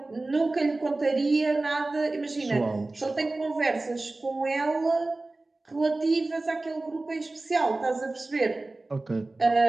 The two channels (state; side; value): quieter; left; 3.1 dB